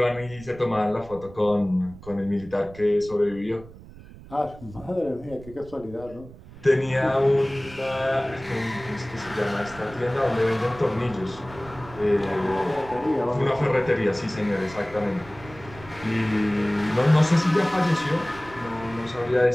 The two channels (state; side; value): noise; right; rumble, 18 dB below the sound